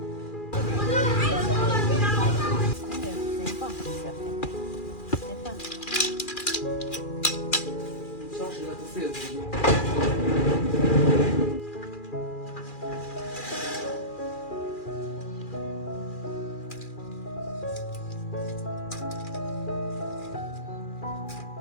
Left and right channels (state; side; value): late; right; 2.4 ms